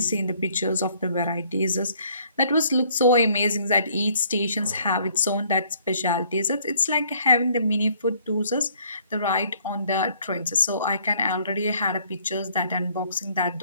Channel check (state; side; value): inverted; both; correlation -0.62